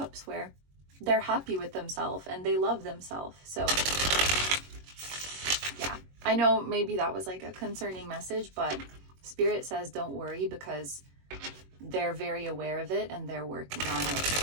where they're happy with themselves and they love themselves. So yeah, I know maybe that was like a concerning message, but Spirit says don't worry, because they're very aware of it and they're working on it.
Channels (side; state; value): left; late; 21 ms